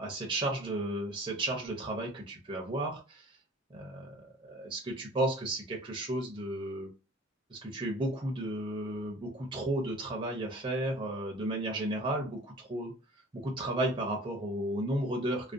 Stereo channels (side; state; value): both; normal; correlation 0.46